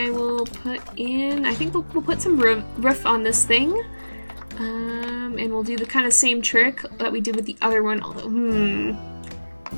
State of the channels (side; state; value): both; inverted; correlation -1.00